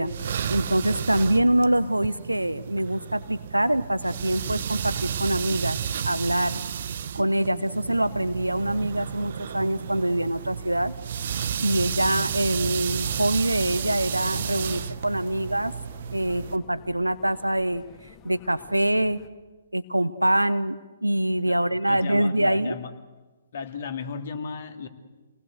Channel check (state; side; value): inverted; both; correlation -0.94